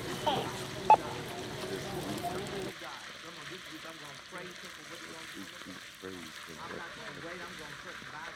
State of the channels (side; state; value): both; identical; correlation 1.00